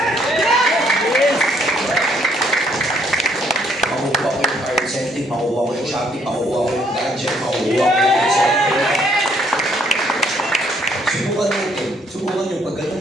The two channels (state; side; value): normal; both; correlation 0.67